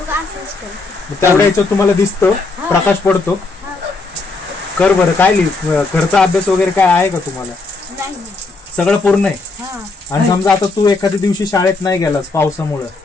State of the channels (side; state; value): right; quieter; 3.6 dB